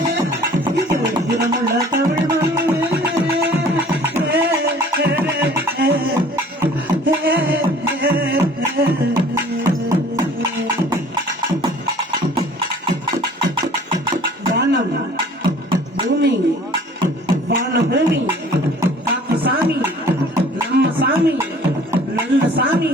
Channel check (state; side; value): normal; both; correlation 0.51